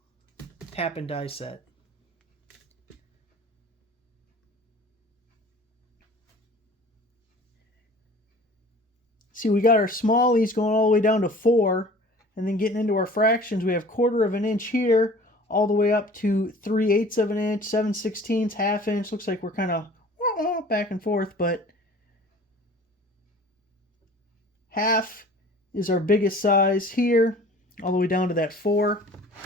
tap and die set. See, we got our smallies going all the way down to 4, and then getting into our fractions, we have 1/4 of an inch here, all the way up to 3/8 of an inch, 7/16, ½ inch. Looks like we're kind of back and forth, but half is our biggest size here, all the way down to that 4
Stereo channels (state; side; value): normal; both; correlation 0.46